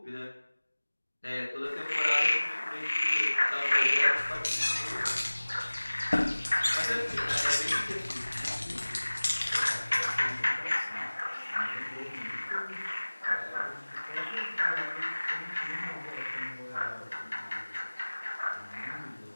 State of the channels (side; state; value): both; inverted; correlation -1.00